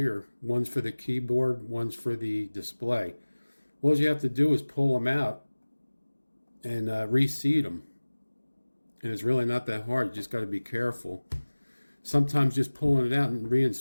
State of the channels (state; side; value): inverted; both; correlation -1.00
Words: One's for the keyboard, one's for the display. All you have to do is pull them out and reseat them. And it's really not that hard. You just got to be careful. Sometimes just pulling it out and